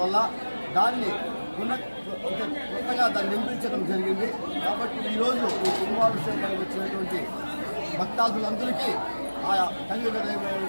దాన్ని కొత్తగా దాన్ని నిర్మించడం జరిగింది. కాబట్టి ఈరోజు ఈ కుంభాభిషేకానికి వచ్చినటువంటి భక్తాదులందరికీ ఆయా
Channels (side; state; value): both; inverted; correlation -1.00